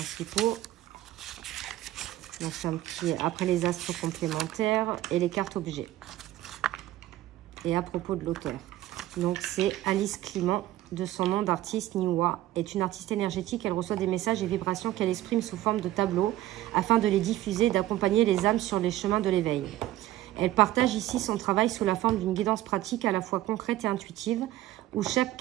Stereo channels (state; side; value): quieter; left; 14.8 dB